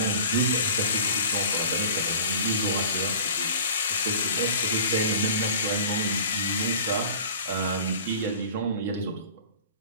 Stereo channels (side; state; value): both; inverted; correlation -0.42